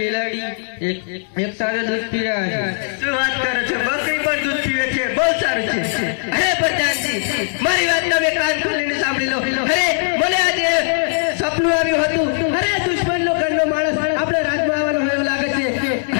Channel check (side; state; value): right; silent; digital silence